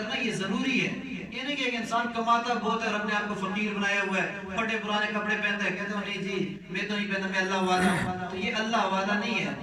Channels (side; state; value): both; identical; correlation 1.00